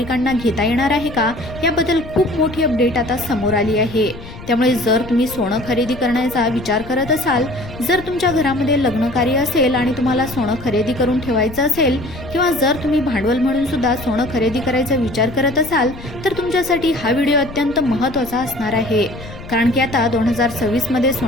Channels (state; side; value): noise; left; rumble, 14 dB below the sound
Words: घेता येणार आहे का याबद्दल खूप मोठी अपडेट आता समोर आली आहे। त्यामुळे जर तुम्ही सोनं खरेदी करण्याचा विचार करत असाल, जर तुमच्या घरामध्ये लग्न कार्य असेल आणि तुम्हाला सोनं खरेदी करून ठेवायचं असेल, किंवा जर तुम्ही भांडवल म्हणून सुद्धा सोनं खरेदी करायचा विचार करत असाल तर तुमच्यासाठी हा व्हिडिओ अत्यंत महत्त्वाचा असणार आहे। कारण की आता 2026 मध्ये